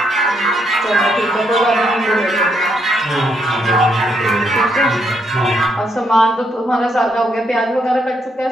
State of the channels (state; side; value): normal; both; correlation 0.76